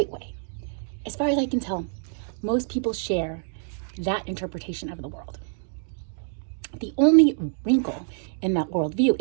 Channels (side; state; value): left; silent; 55 dB below the other